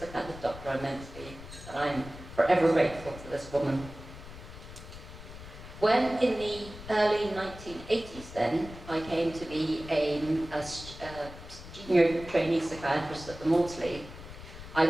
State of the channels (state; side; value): noise; left; rumble, 14 dB below the sound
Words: kind of doctor I'm meant to be, and I'm forever grateful to this woman. When in the early 1980s then, I came to be a junior trainee psychiatrist at the Maudsley, I